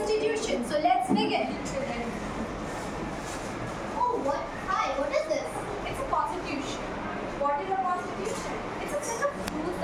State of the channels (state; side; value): identical; both; correlation 1.00